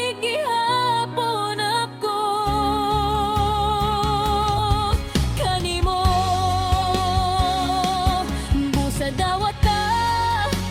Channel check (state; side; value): identical; both; correlation 1.00